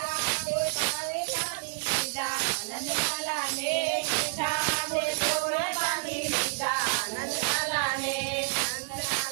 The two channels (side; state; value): left; silent; 57 dB below the other